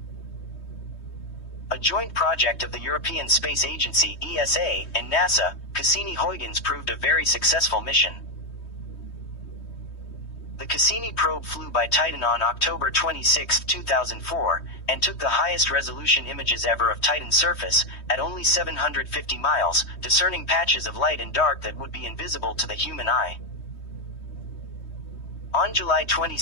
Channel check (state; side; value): late; right; 3.2 ms